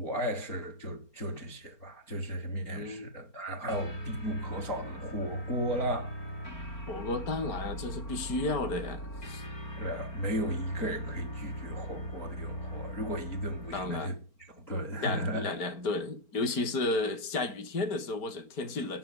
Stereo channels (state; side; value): late; right; 4.4 ms